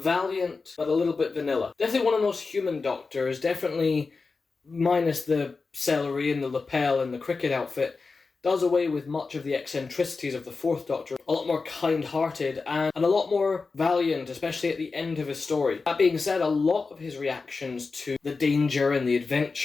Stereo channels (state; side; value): quieter; right; 4.3 dB